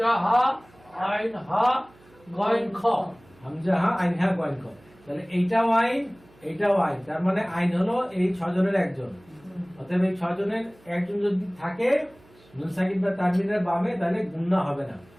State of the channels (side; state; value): right; noise; hum, 28 dB below the sound